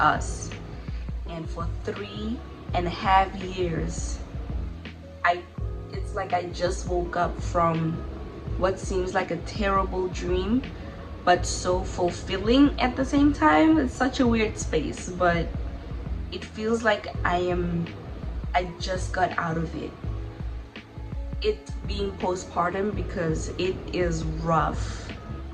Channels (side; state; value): both; identical; correlation 1.00